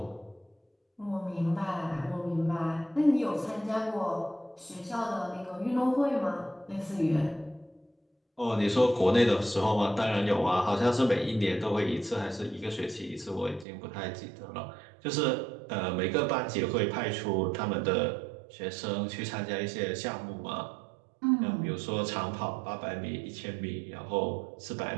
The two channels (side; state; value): left; drops out; at 13.7 s